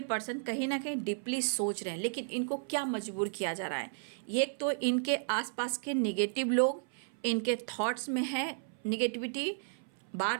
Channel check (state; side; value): silent; left; 55 dB below the other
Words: पर्सन कहीं ना कहीं डीपली सोच रहे हैं, लेकिन इनको क्या मजबूर किया जा रहा है, एक तो इनके आसपास के निगेटिव लोग, इनके थॉट्स में है निगेटिविटी, बार